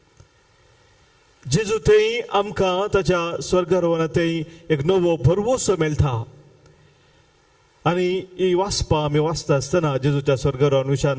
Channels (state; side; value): identical; both; correlation 1.00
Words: जेजू थंय आमकां ताच्या स्वर्गारोहणांत थंय एक नवो भरवोसो मेळटा. आनी ही वाचपां आमी वाचता आसतना जेजूच्या स्वर्गारोहण